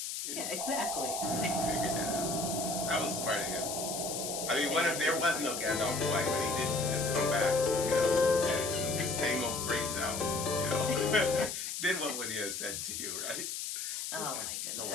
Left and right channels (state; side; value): noise; left; hiss, 4 dB below the sound